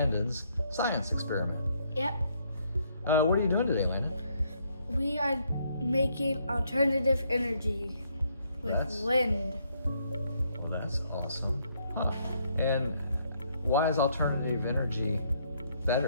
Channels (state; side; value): inverted; both; correlation -0.71